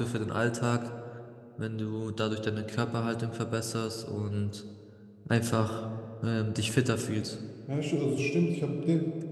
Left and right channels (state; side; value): identical; both; correlation 1.00